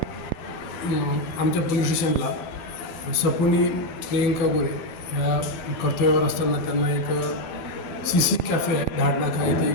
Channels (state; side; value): late; right; 13 ms